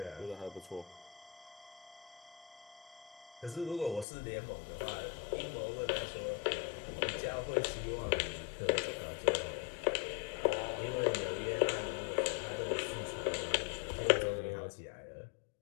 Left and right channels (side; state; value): right; drops out; at 4.0 s